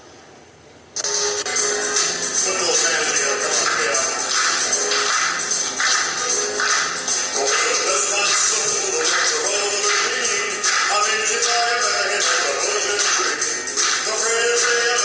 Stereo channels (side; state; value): both; identical; correlation 1.00